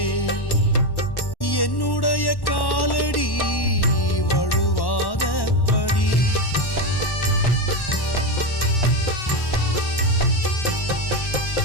என்னுடைய காலடி வழுவாதபடி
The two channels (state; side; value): late; right; 1.1 ms